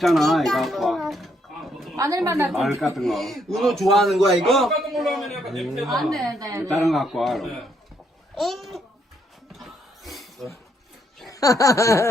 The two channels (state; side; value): normal; both; correlation 0.73